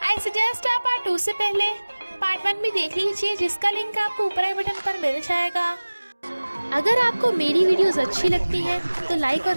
आई सजेस्ट आप पार्ट 2 से पहले पार्ट 1 भी देख लीजिए, जिसका लिंक आपको ऊपर आई बटन पर मिल जाएगा। अगर आपको मेरी वीडियोस अच्छी लगती हैं तो लाइक और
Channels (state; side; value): inverted; both; correlation -1.00